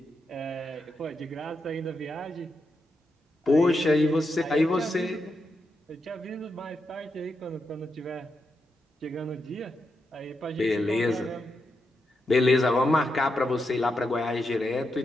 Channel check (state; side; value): normal; both; correlation 0.85